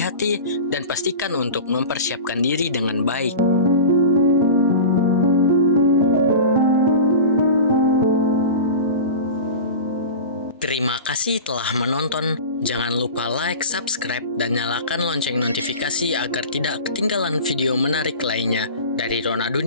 dan pastikan untuk mempersiapkan diri dengan baik. Terima kasih telah menonton. Jangan lupa like, subscribe, dan nyalakan lonceng notifikasi agar tidak ketinggalan video menarik lainnya dari Rona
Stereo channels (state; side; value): inverted; both; correlation -0.34